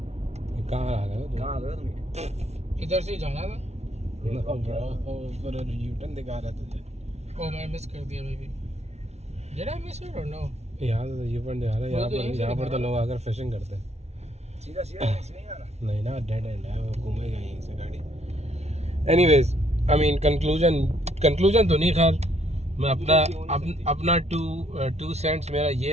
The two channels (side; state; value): left; late; 0.31 ms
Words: कहाँ आ गए? कहाँ आ गए तुम? इधर से ही जाना था। यूटर्न दिखा रहा तुझे। ओ मैं मिस कर दिया baby. Did I miss it or no? यहाँ से यूटर्न दिखा रहा है। यहाँ पर तो लोग आकर फिशिंग करते हैं। सीधा सीधा नहीं जाना। नहीं ना, डेड एंड है, वो घूमेगा यहीं से गाड़ी। एनीवेज, आई मीन कंक्लूजन तो नहीं, खैर मैं अपना टू सेंट्स मेरा